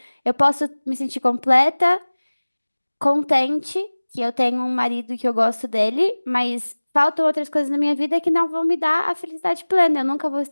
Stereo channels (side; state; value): both; inverted; correlation -1.00